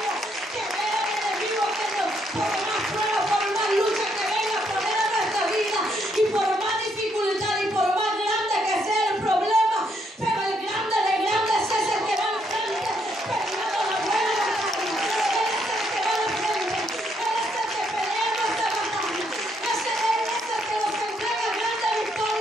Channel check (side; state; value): both; normal; correlation 0.74